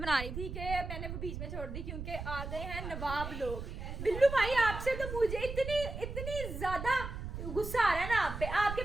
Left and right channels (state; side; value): noise; right; rumble, 7 dB below the sound